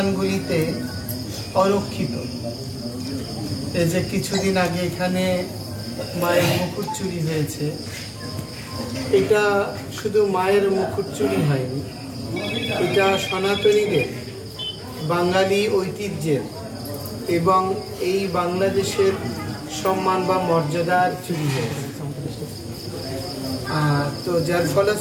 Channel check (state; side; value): identical; both; correlation 1.00